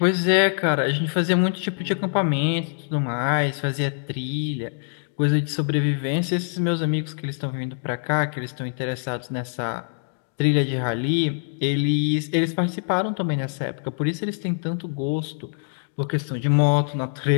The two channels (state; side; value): silent; right; digital silence